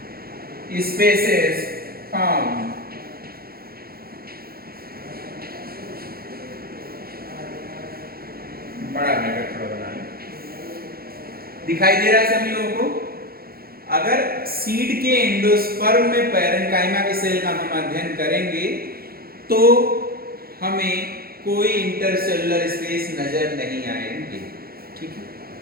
spaces found. बड़ा ब्रैकेट थोड़ा बना लें, दिखाई दे रहा है सभी लोगों को? अगर सीड के एंडोस्पर्म में पैरेन्काइमा की सेल का हम अध्ययन करेंगे तो हमें कोई इंटरसेलुलर स्पेस नजर नहीं आएंगे, ठीक है?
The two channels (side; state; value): left; late; 0.44 ms